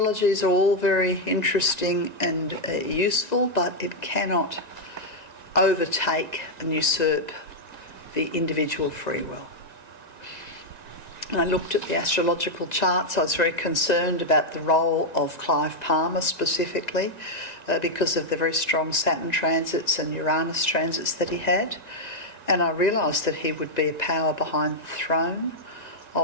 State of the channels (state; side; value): late; right; 2.0 ms